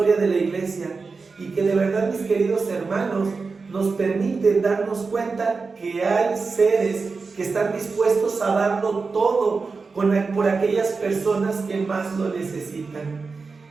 de la iglesia, y que de verdad, mis queridos hermanos, nos permiten darnos cuenta que hay seres que están dispuestos a darlo todo por aquellas personas que más lo necesitan.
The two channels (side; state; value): left; quieter; 4.5 dB